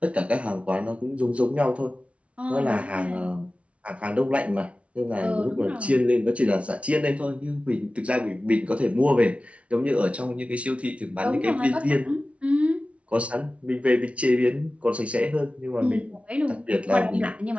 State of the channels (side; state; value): left; late; 0.063 ms